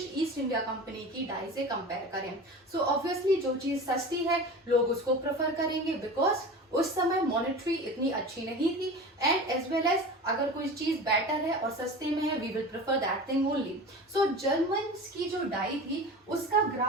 ईस्ट इंडिया कंपनी की डाई से कंपेयर करें। सो ऑब्वियसली जो चीज सस्ती है लोग उसको प्रेफर करेंगे, बिकॉज उस समय मॉनेटरी इतनी अच्छी नहीं थी, एंड एज वेल एज अगर कोई चीज बेटर है और सस्ते में है, we will prefer that thing only. So Germans की जो डाई थी उसका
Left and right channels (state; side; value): normal; both; correlation 0.33